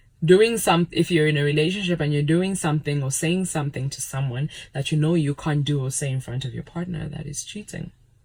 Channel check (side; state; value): both; identical; correlation 1.00